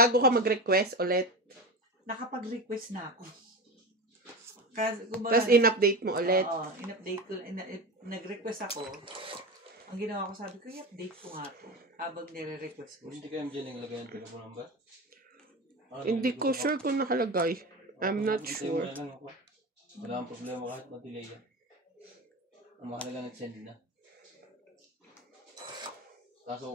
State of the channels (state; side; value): normal; both; correlation 0.25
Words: ka mag-request ulit. Nakapag-request na ako. Kasi, Tapos in-update mo ulit. Oo, in-update ko. Nag-request ako. Ang ginawa ko, sabi ko, i-update ko nga to. Habang nire-request ko. Hindi kayo dyan naglagay ng telephone number? Hindi ko sure kung nakalagay. I'm not sure. Wala ang problema kahit ma-delay yan. Ang mahalaga nag-send na.